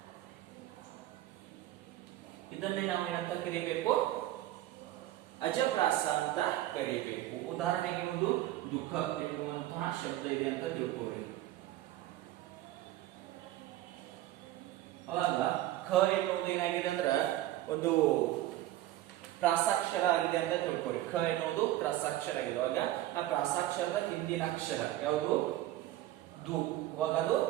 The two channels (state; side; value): quieter; left; 14.7 dB